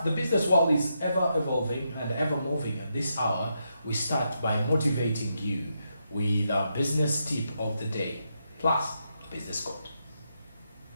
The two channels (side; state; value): both; inverted; correlation -0.82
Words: the business world is ever evolving and ever moving. At this hour, we start by motivating you with our business tip of the day, plus business code.